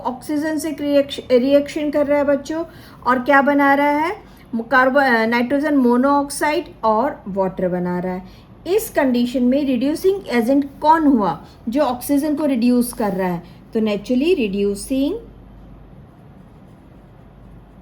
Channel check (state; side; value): identical; both; correlation 1.00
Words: से रिएक्शन कर रहा है बच्चों, और क्या बना रहा है? कार्बन नाइट्रोजन मोनोऑक्साइड और वाटर बना रहा है। इस कंडीशन में रिड्यूसिंग एजेंट कौन हुआ? जो ऑक्सीजन को रिड्यूस कर रहा है, तो naturally reducing